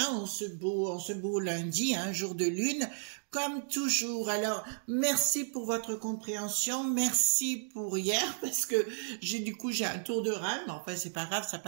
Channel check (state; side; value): silent; left; digital silence